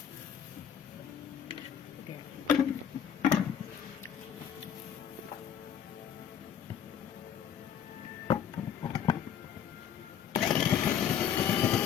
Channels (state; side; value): quieter; right; 8.7 dB